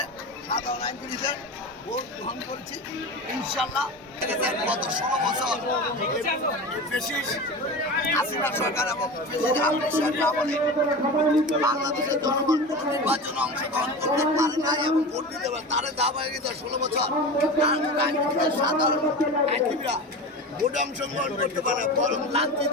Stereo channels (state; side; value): normal; both; correlation 0.29